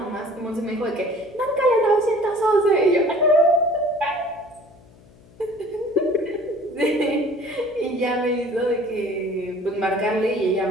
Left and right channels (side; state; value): left; noise; hum, 26 dB below the sound